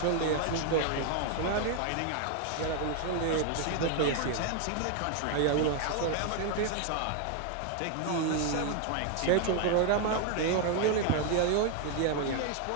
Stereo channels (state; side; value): different; both; correlation 0.01